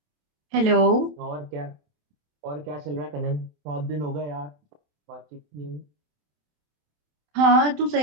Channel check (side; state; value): left; late; 27 ms